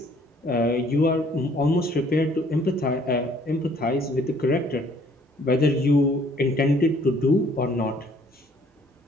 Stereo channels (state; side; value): normal; both; correlation 0.60